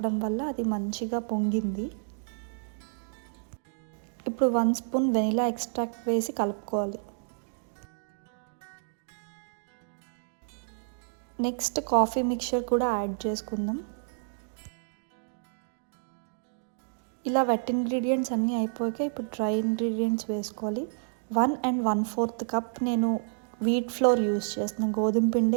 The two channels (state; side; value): silent; left; digital silence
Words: వల్ల అది మంచిగా పొంగింది. ఇప్పుడు 1 spoon వెనిలా ఎక్స్ట్రాక్ట్ వేసి కలుపుకోవాలి. నెక్స్ట్ కాఫీ మిక్చర్ కూడా యాడ్ చేసుకుందాం. ఇలా వెట్ ఇంగ్రీడియంట్స్ అన్నీ అయిపోయాక ఇప్పుడు డ్రై ఇంగ్రీడియంట్స్ వేసుకోవాలి. 1 and 1/4 cup నేను వీట్ ఫ్లోర్ యూస్ చేస్తున్నాను, గోధుమ